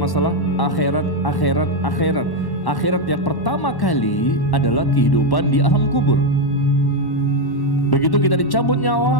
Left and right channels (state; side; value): late; right; 1.1 ms